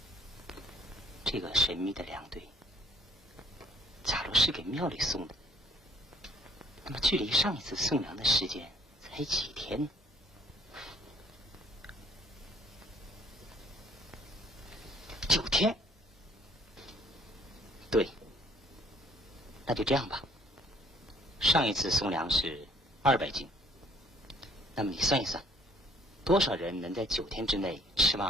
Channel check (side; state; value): both; normal; correlation 0.59